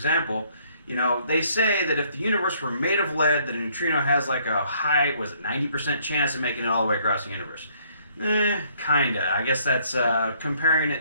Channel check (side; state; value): both; inverted; correlation -0.65